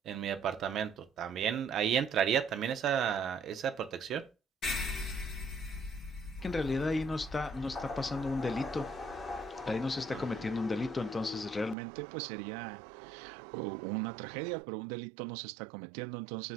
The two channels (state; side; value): drops out; left; at 11.8 s